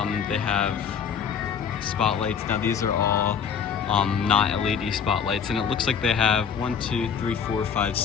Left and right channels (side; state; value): right; quieter; 7.1 dB